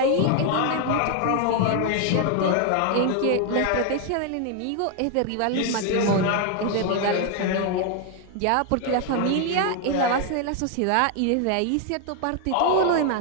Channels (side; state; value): both; different; correlation 0.00